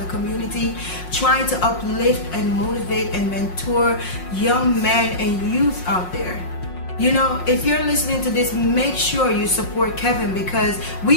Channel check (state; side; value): late; right; 5.5 ms